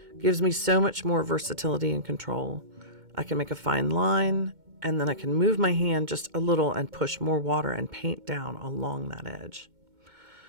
gives me so much more versatility and control. I can make a fine line, and then I can move my hand just a little and push more water and paint down along that edge.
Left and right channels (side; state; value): left; late; 2.2 ms